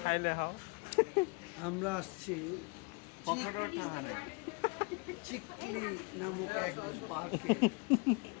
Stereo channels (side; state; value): right; quieter; 31.6 dB